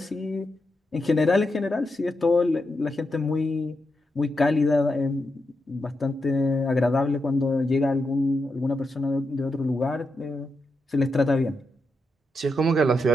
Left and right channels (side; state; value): both; normal; correlation 0.85